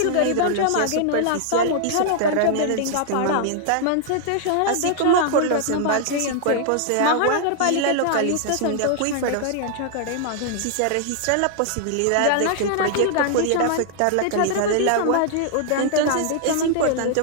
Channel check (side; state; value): both; different; correlation -0.01